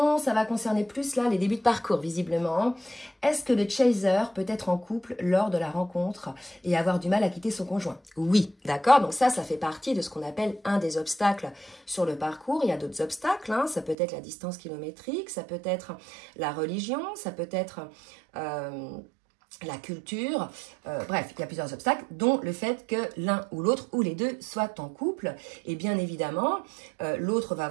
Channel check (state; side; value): drops out; left; at 14.0 s